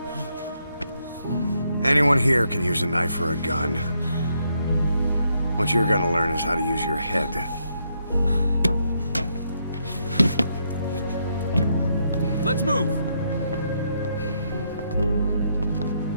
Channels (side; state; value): both; inverted; correlation -0.76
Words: Anyone here can use a knife or a gun. What you're gonna learn is how to use your head. Let's move!